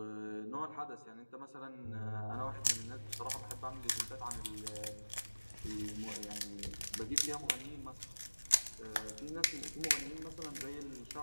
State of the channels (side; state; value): both; inverted; correlation -1.00